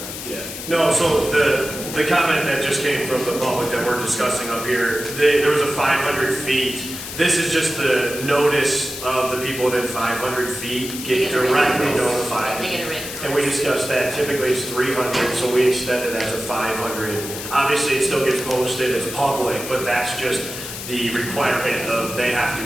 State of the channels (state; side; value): noise; left; hiss, 9 dB below the sound